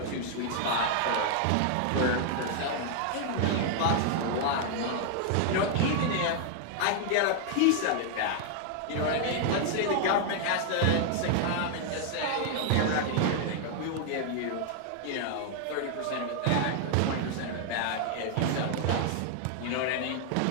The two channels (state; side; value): different; both; correlation 0.00